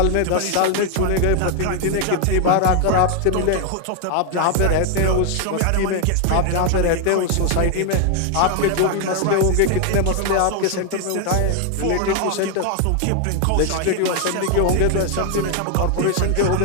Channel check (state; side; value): different; both; correlation 0.00